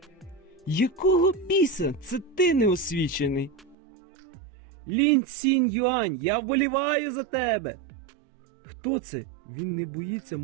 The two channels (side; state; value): left; drops out; at 3.8 s